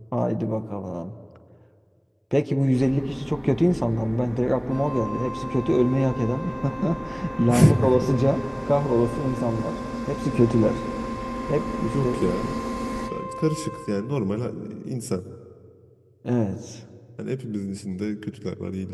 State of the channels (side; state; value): both; identical; correlation 1.00